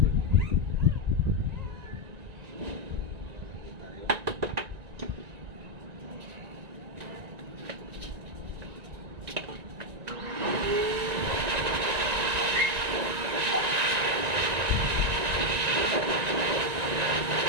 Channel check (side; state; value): left; late; 1.9 ms